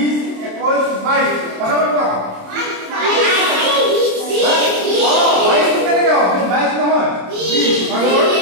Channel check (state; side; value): late; left; 27 ms